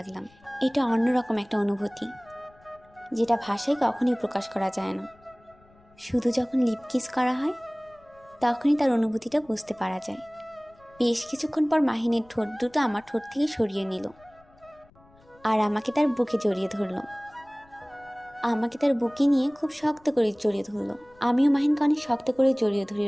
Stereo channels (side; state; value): left; noise; rumble, 29 dB below the sound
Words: এটা অন্যরকম একটা অনুভূতি, যেটা ভাষায় কখনোই প্রকাশ করা যায় না। শুধু যখন লিপ কিস করা হয় তখনই তার অনুভূতিটা বুঝতে পারা যায়। বেশ কিছুক্ষণ পর মাহিনের ঠোঁট দুটো আমার ঠোঁট থেকে সরিয়ে নিল আর আমাকে তার বুকে জড়িয়ে ধরলো। আমাকে তার বুকে নিয়ে খুব শক্ত করে জড়িয়ে ধরলো। আমিও মাহিনকে অনেক শক্ত করে জড়িয়ে ধরে